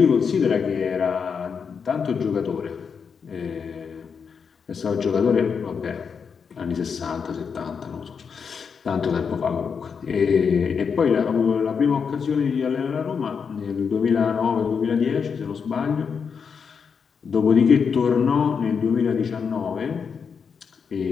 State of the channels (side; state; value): right; quieter; 6.2 dB